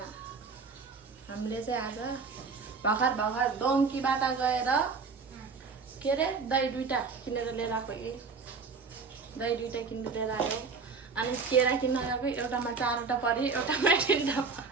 हामीले चाहिँ आज भर्खर डोङ्कीबाट गएर के अरे दही दुईटा किनेर लिएर आएको। दही दुईटा किनेर लिएर आयो। अनि केरा किन्न गएको, एउटामा 4वटा पऱ्यो, एउटामा 3वटा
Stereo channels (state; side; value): quieter; left; 4.8 dB